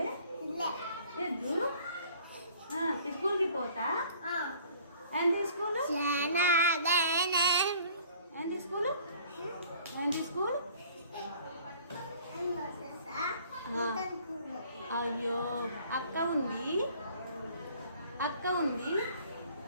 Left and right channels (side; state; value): both; inverted; correlation -0.53